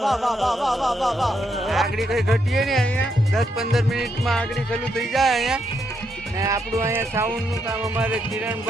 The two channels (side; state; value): both; normal; correlation 0.79